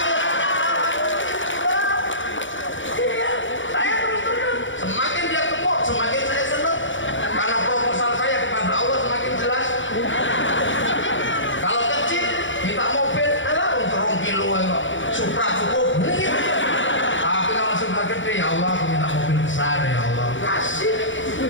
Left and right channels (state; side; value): late; right; 0.56 ms